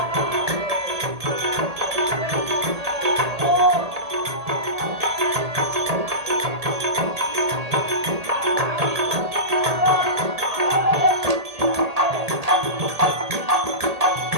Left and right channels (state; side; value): late; left; 1.8 ms